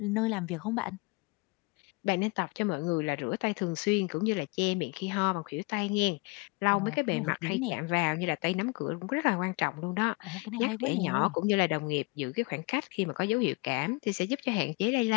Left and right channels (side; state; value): right; quieter; 27.9 dB